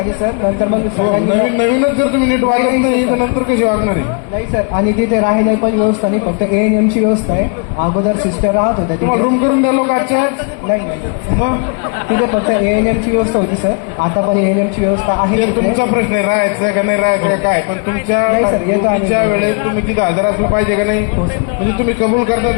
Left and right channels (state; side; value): quieter; right; 36.9 dB